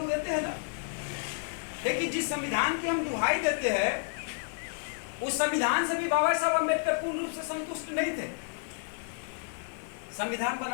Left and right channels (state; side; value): silent; right; 57 dB below the other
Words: देते हैं ना, लेकिन जिस संविधान की हम दुहाई देते हैं उस संविधान से भी बाबा साहब अम्बेडकर पूर्ण रूप से संतुष्ट नहीं थे। संविधान